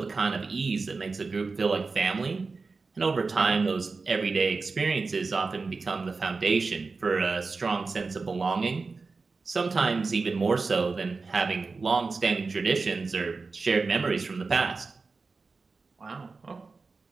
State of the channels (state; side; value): quieter; left; 4.2 dB